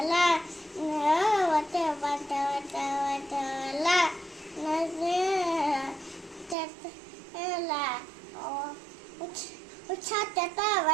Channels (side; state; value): left; drops out; at 6.6 s